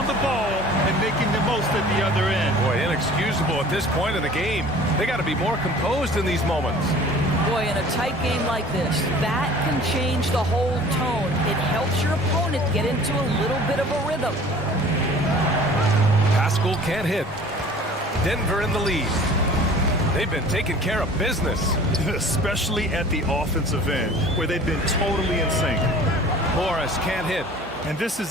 the ball and making the most at the other end. Boy, inexcusable at this point in the game. They got to be more composed in these moments. Boy, in a tight game like this, that can change the whole tone. It helps your opponent get into a little bit of a rhythm. Pascal can't hit. Denver in the lead. They've been taking care of business. Especially at the offensive end, where they've been totally in sync. Morris can't hit. And this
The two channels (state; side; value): normal; both; correlation 0.46